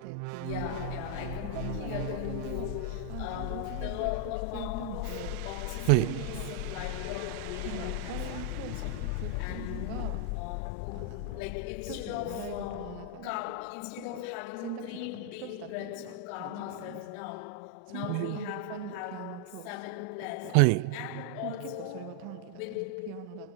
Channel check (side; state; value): both; different; correlation 0.00